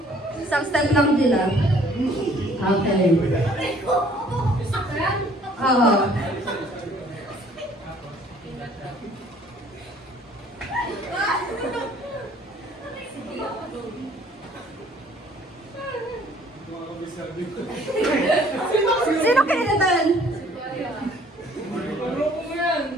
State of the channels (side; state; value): both; normal; correlation 0.58